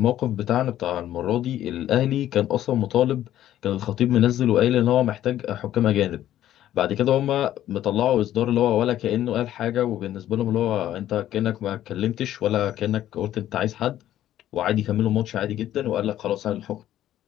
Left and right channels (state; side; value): quieter; right; 12.5 dB